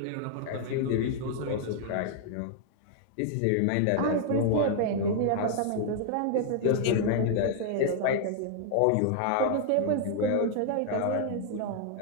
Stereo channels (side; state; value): both; different; correlation -0.01